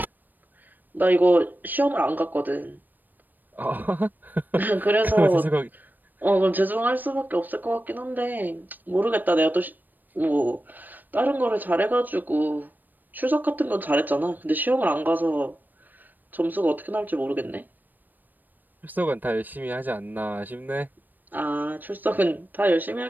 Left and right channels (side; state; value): left; late; 0.089 ms